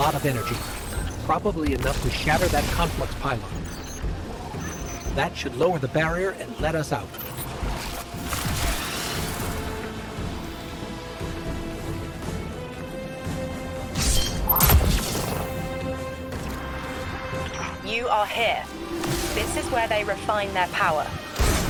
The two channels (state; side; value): identical; both; correlation 1.00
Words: of energy, probably enough to shatter that conflux pylon. That should lower the barrier and let us out. You are here. This is where they refine their power.